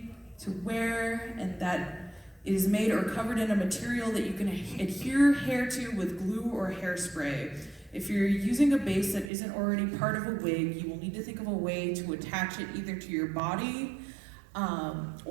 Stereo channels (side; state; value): left; drops out; at 9.3 s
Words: to wear and that it is made or covered in a material that you can adhere hair to with glue or hairspray. If you're using a base that isn't already part of a wig, you will need to think of a way to attach it either to your body